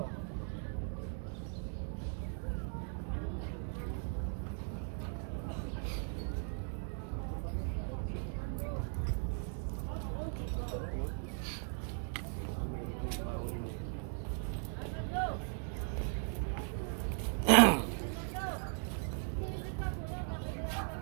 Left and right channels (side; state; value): left; silent; 52 dB below the other